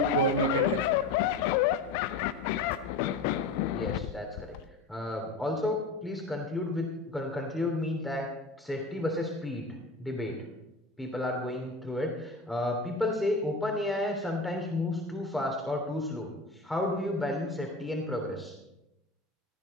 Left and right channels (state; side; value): quieter; right; 3.2 dB